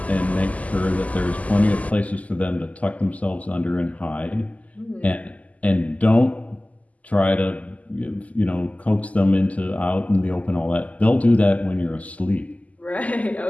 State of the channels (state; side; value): late; right; 0.072 ms